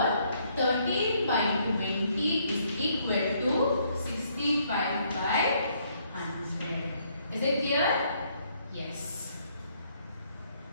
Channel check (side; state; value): both; inverted; correlation -0.69